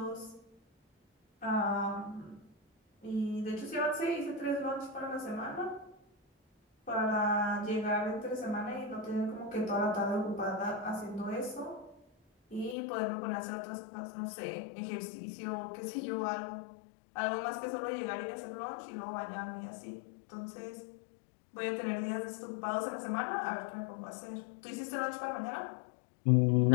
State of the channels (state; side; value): drops out; right; at 12.8 s